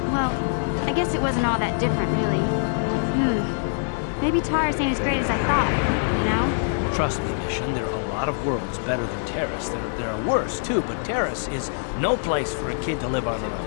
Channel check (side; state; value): right; silent; digital silence